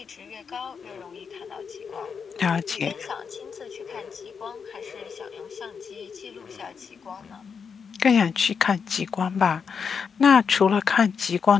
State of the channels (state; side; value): quieter; right; 6.1 dB